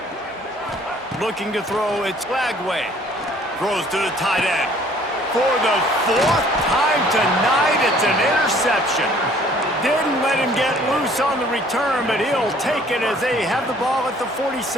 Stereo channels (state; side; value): normal; both; correlation 0.57